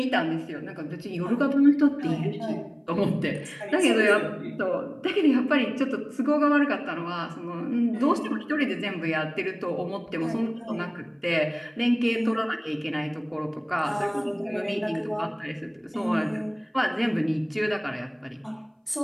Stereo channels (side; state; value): both; identical; correlation 1.00